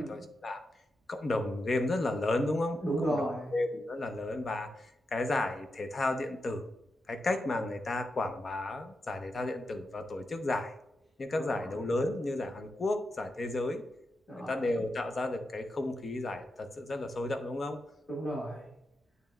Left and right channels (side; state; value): both; normal; correlation 0.87